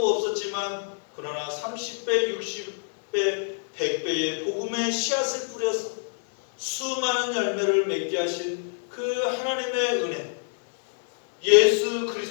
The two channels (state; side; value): silent; right; 61 dB below the other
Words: 없었지만 그러나 30배, 60배, 100배의 복음의 씨앗을 뿌려서 수많은 열매를 맺게 하신 그 하나님의 은혜, 예수